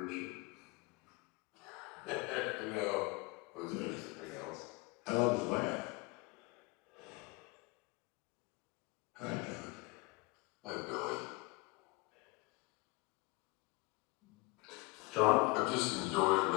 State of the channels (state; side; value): quieter; right; 25.4 dB